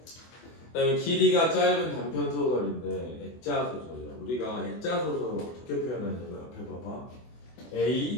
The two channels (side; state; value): right; late; 24 ms